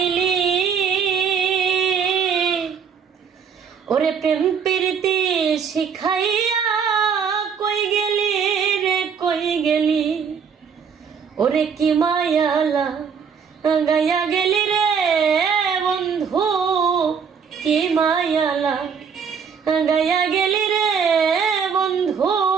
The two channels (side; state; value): left; quieter; 6.7 dB